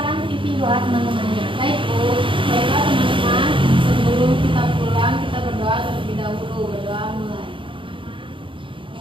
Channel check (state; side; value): late; left; 0.25 ms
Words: pimpin doa teman-temannya. Baik, Bu. Baiklah teman-teman, sebelum Sebelum kita pulang, kita berdoa terlebih dahulu. Berdoa mulai.